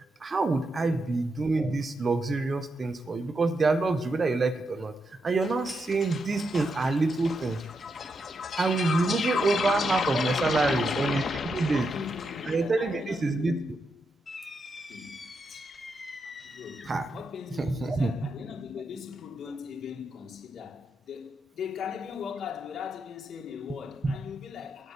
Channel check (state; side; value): normal; both; correlation 0.83